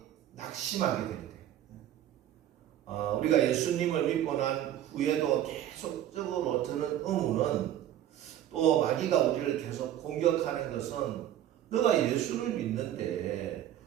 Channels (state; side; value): quieter; left; 11.8 dB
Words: 낙심하게 될 때. 우리가 예수님을 믿고 난 후에도 계속적으로 드는 의문은, 또 마귀가 우리를 계속 공격하는 것은, 너가 예수를 믿는데